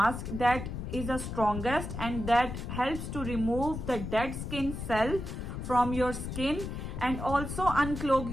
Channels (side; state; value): left; noise; rumble, 6 dB below the sound